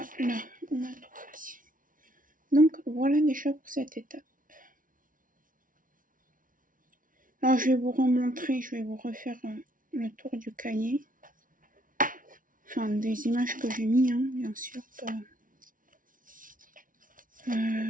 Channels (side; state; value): left; late; 0.39 ms